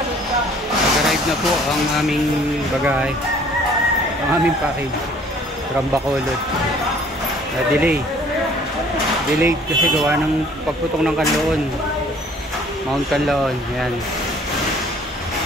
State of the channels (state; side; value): normal; both; correlation 0.55